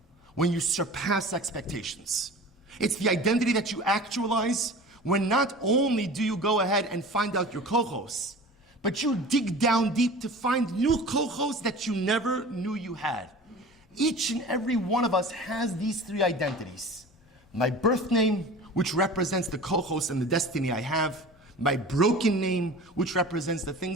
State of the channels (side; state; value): both; normal; correlation 0.38